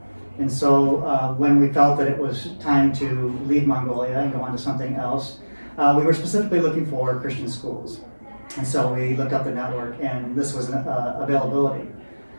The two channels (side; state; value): both; inverted; correlation -1.00